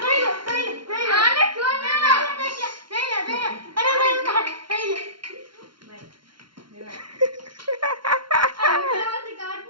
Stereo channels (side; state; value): left; late; 0.73 ms